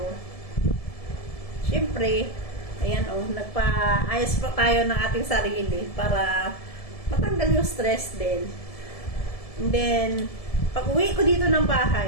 Siyempre, ayan nagpa-ayos po tayo ng ating sarili para matanggal yung stress din. And then, pag-uwi ko dito ng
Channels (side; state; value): right; late; 1.7 ms